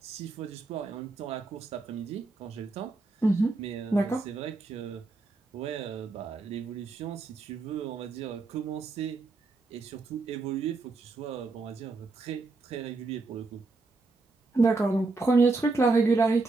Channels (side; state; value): left; quieter; 3.6 dB